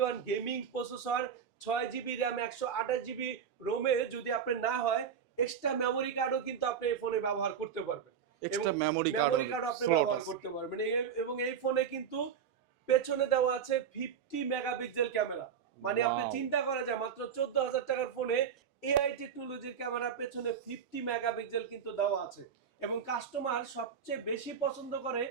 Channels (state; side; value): quieter; left; 7.5 dB